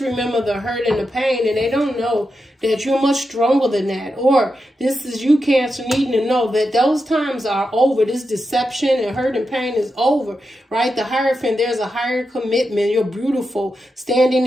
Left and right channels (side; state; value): both; normal; correlation 0.88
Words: remember the hurt and the pain, and they don't know that you're much stronger than that. Or this is you, Cancer, needing to know that those times are over. This deception and hurt and pain is over, right? The Hierophant, there's a higher commitment. You're beautiful, standing